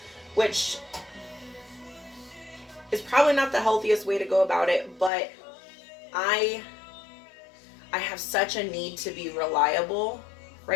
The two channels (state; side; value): drops out; right; at 5.1 s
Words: which is probably not the healthiest way to go about it. But I have such a need to be reliable